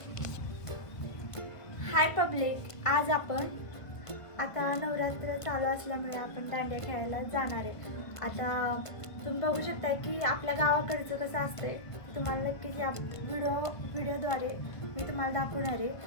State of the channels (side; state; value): right; late; 1.5 ms